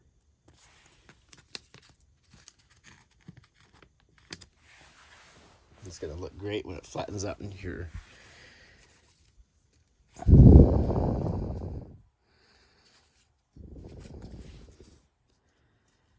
It's gonna look great when it flattens out in here.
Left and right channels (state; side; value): identical; both; correlation 1.00